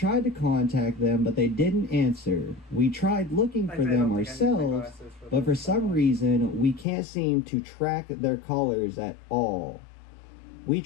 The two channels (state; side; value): drops out; right; at 6.9 s